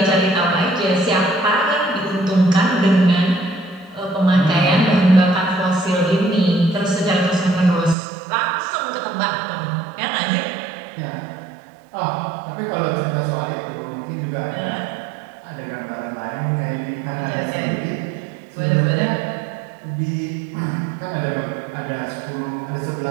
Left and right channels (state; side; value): drops out; left; at 8.0 s